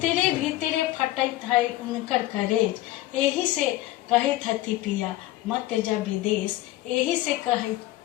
भीतरे फटैत है उनकर करेज। यही से कहे हती पिया मत जा विदेश। यही से कहे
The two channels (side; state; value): right; quieter; 16.4 dB